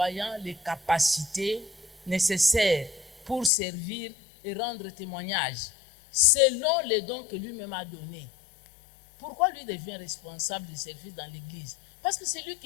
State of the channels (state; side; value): drops out; right; at 3.5 s